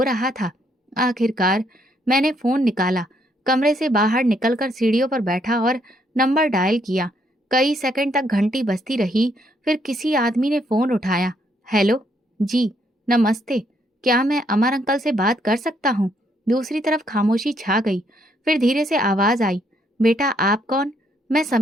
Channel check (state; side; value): normal; both; correlation 0.72